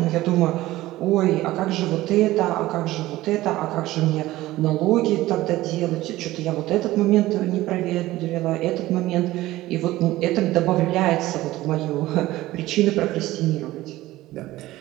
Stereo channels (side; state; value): left; quieter; 16.8 dB